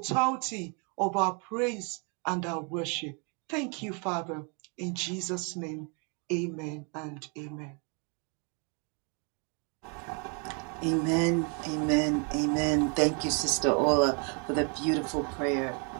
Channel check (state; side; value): quieter; left; 36.8 dB